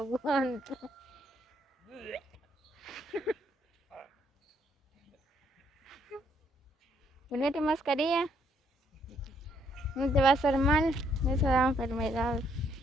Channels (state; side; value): normal; both; correlation 0.70